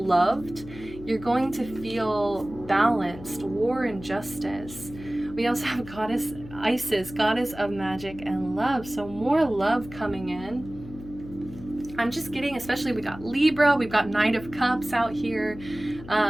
loved. You're going to feel balanced. War and justice. We also have goddess Isis, goddess of magic and love. So more love coming in. I'm just getting, especially we got Libra, we've got Knight of Cups out here.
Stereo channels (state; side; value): noise; left; hum, 15 dB below the sound